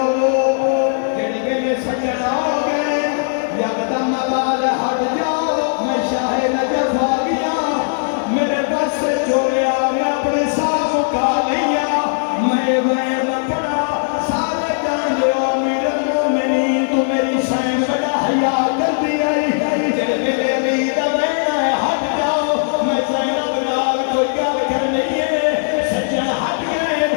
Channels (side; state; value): right; silent; digital silence